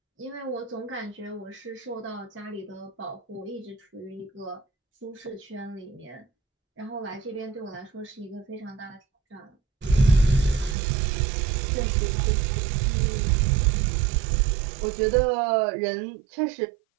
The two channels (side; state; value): left; drops out; at 10.8 s